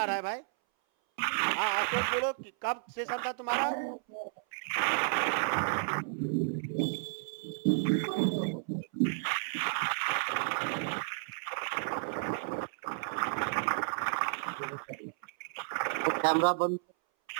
रहा है भाई? हाँ, आपको बोलो कि कब सेशन था तुम्हारा? कैमरा बंद।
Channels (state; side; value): silent; left; 56 dB below the other